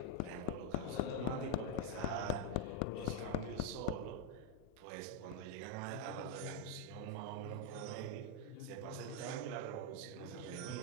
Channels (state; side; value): different; both; correlation 0.01